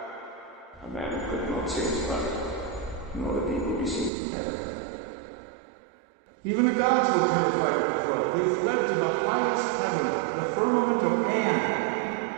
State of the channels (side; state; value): left; drops out; at 4.1 s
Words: A man could not see his brother, nor the people be seen from heaven. Even the gods were terrified at the flood. They fled to the highest heaven, the firmament of An.